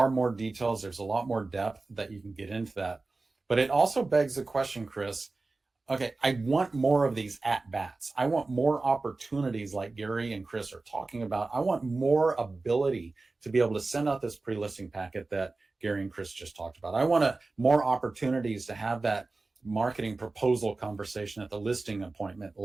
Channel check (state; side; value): quieter; left; 3.5 dB